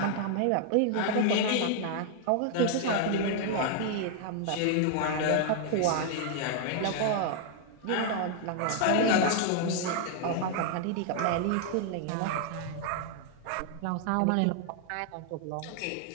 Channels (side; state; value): both; different; correlation 0.00